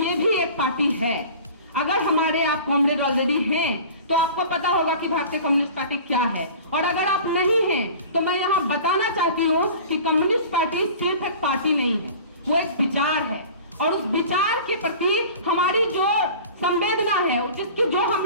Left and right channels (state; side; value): inverted; both; correlation -0.41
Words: भी एक पार्टी है। अगर हमारे आप कॉमरेड ऑलरेडी हैं तो आपको पता होगा कि भारतीय कम्युनिस्ट पार्टी क्या है, और अगर आप नहीं हैं तो मैं यहाँ बताना चाहती हूँ कि कम्युनिस्ट पार्टी सिर्फ एक पार्टी नहीं है, वो एक विचार है। और उस विचार के प्रति हमारी जो संवेदना है, जिसकी जो हम